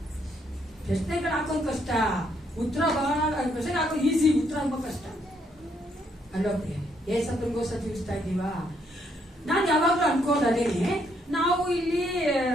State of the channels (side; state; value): both; normal; correlation 0.72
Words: ಪ್ರಶ್ನೆಗಳು ಹಾಕೋದು ಕಷ್ಟ, ಉತ್ತರ ಬಹಳ ಪ್ರಶ್ನೆ ಹಾಕೋದು ಈಸಿ, ಉತ್ತರ ತುಂಬಾ ಕಷ್ಟ ಅಲ್ವಾ? ಏಸಪ್ಪನಿಗೋಸ್ಕರ ಜೀವಿಸ್ತಾ ಇದ್ದೀವಾ? ನಾನು ಯಾವಾಗ್ಲೂ ಅನ್ಕೋದೇನೆ, ನಾವು ಇಲ್ಲಿ